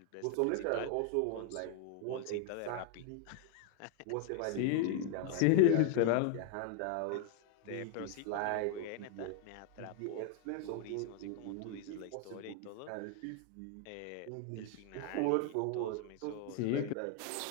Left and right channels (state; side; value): different; both; correlation 0.00